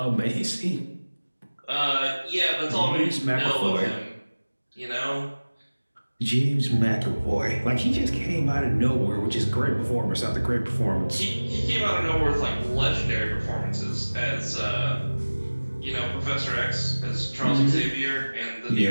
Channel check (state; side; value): inverted; both; correlation -1.00